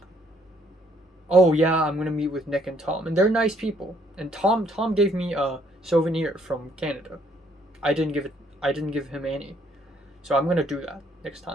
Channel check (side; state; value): both; normal; correlation 0.67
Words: Oh yeah, I'm gonna meet with Nick and Tom, and they're nice people. And Tom gave me a souvenir from Canada. I didn't give him any. So I'm gonna do that next